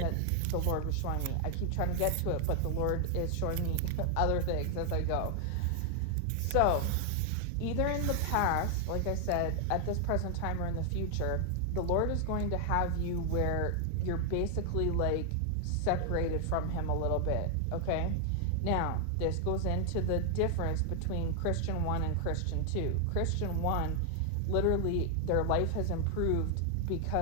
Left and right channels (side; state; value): both; different; correlation 0.00